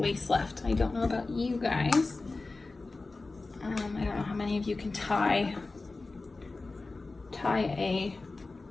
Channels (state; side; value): quieter; right; 3.5 dB